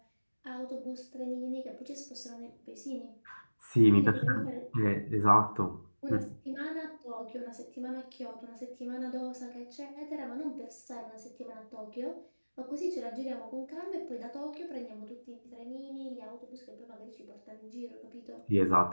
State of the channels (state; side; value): inverted; both; correlation -1.00